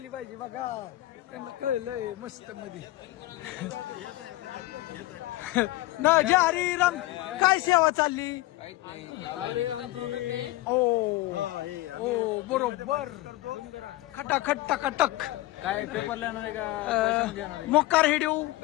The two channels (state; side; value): quieter; right; 17.8 dB